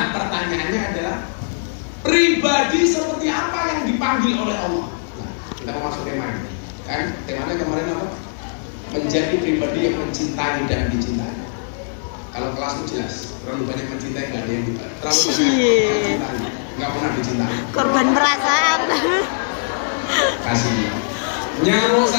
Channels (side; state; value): right; silent; 65 dB below the other